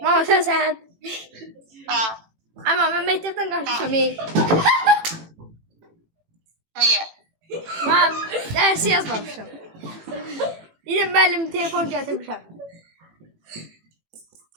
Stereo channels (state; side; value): late; left; 18 ms